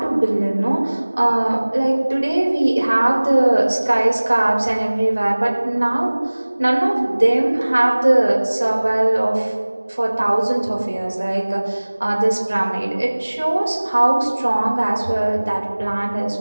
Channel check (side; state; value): both; inverted; correlation -1.00